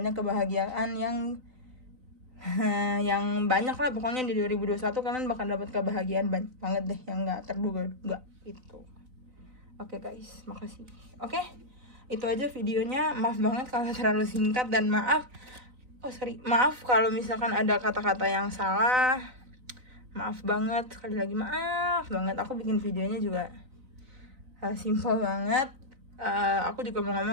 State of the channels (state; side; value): late; left; 4.0 ms